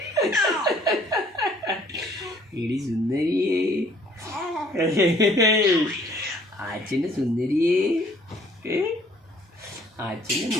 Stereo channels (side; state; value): both; normal; correlation 0.59